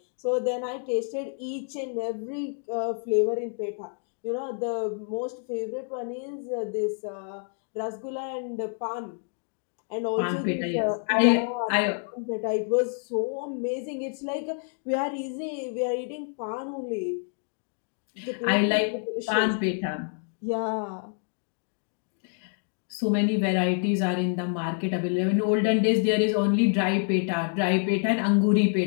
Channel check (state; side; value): silent; right; 56 dB below the other